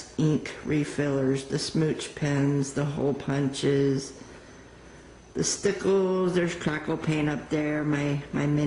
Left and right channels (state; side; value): identical; both; correlation 1.00